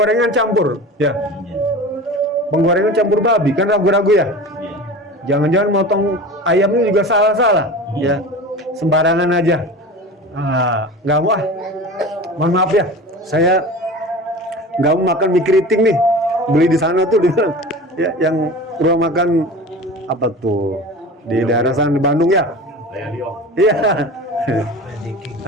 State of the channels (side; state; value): both; normal; correlation 0.34